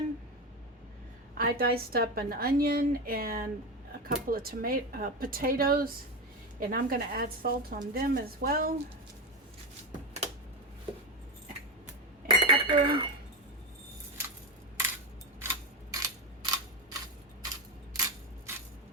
I diced up an onion and a couple of potatoes, and I'm going to add salt on them as well, and pepper.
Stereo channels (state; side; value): normal; both; correlation 0.16